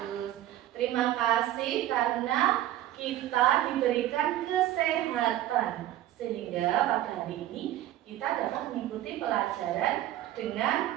Terima kasih karena kita diberikan kesehatan sehingga pada hari ini kita dapat mengikuti pelajaran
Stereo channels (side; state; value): left; quieter; 13.6 dB